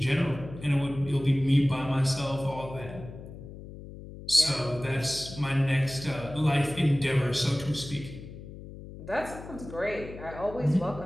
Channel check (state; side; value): noise; left; hum, 14 dB below the sound